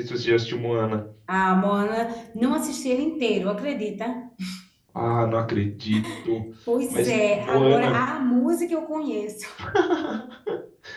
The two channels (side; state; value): both; identical; correlation 1.00